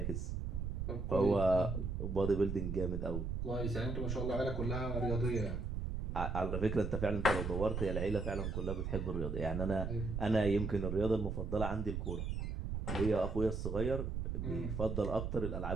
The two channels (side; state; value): right; noise; rumble, 3 dB below the sound